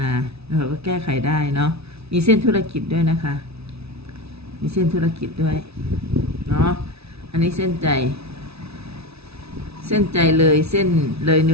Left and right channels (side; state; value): left; late; 0.79 ms